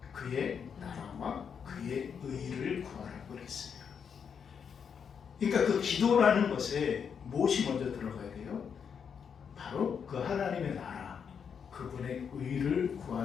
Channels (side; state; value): right; quieter; 7.0 dB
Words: 그의 나라와 그의 의를 구하라고 그랬어요. 그러니까 그 기도라는 것에 무엇이 먼저 들어가야 돼요? 바로 그 하나님의 나라, 그분의 의를